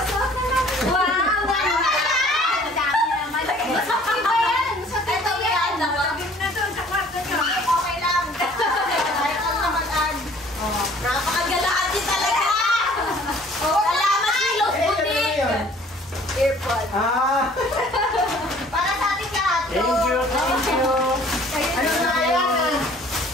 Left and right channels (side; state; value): both; normal; correlation 0.54